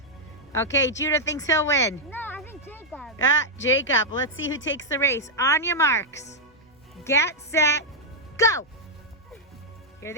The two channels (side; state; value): both; normal; correlation -0.04